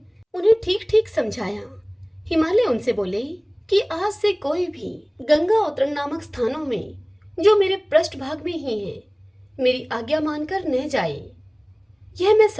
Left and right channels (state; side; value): identical; both; correlation 1.00